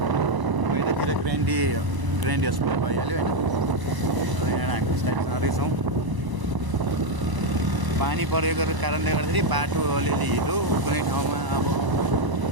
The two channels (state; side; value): late; left; 1.0 ms